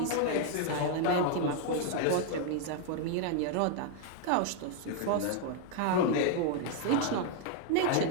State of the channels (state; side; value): different; both; correlation 0.00